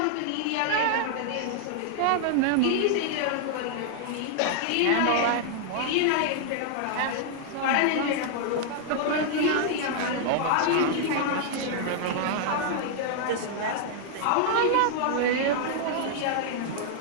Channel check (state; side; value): different; both; correlation 0.00